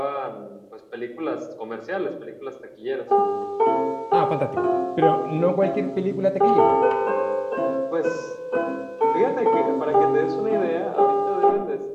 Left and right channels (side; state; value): both; identical; correlation 1.00